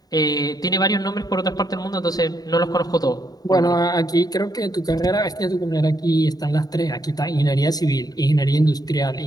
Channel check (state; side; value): late; right; 0.18 ms